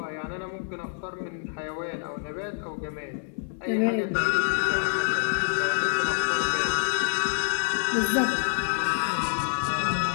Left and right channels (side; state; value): right; silent; digital silence